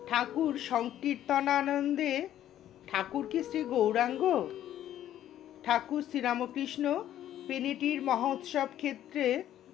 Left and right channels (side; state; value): right; quieter; 11.8 dB